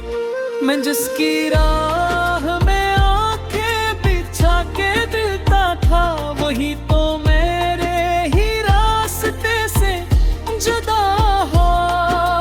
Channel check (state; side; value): identical; both; correlation 1.00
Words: मैं जिसकी राह में आंखें बिछा के दिलता था, वही तो मेरे ही रास्ते से जुदा हो।